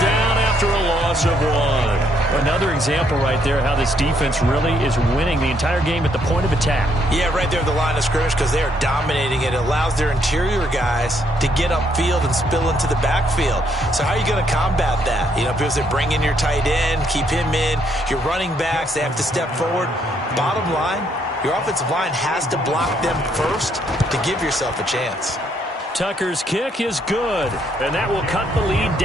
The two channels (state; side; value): normal; both; correlation 0.72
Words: down after a loss of 1. Another example right there how this defense really is winning the entire game at the point of attack. Yeah, right there at the line of scrimmage because they are dominating it. It allows their interior guys to get upfield and spill into the backfield. So how are you going to combat that? You know, because they bring in your tight end, keep him in. Your running backs, they have to step forward. Bottom line, your offensive line has to block them first to give yourself a chance. Tucker's kick is good, and that will cut the lead